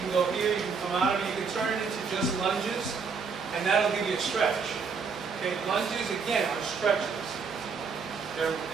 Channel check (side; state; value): left; quieter; 5.3 dB